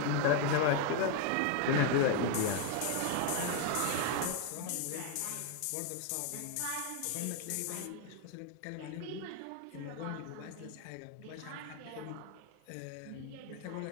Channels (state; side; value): different; both; correlation 0.01